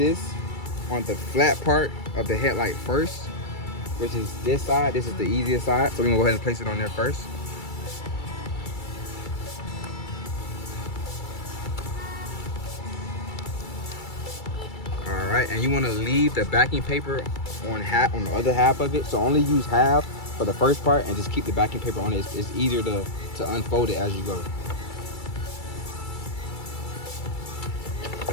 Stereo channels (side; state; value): right; late; 2.3 ms